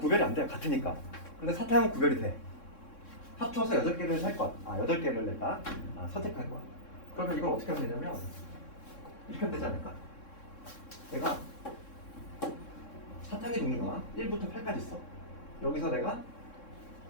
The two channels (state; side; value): late; right; 3.6 ms